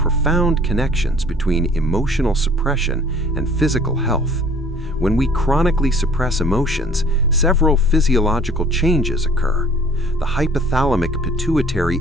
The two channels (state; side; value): normal; both; correlation 0.52